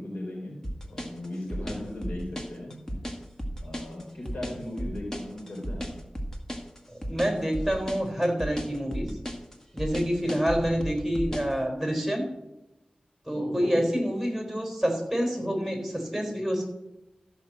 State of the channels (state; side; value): normal; both; correlation 0.97